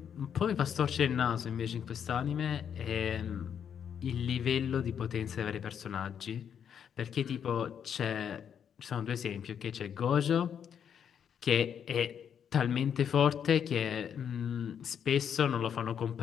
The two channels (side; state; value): right; quieter; 8.2 dB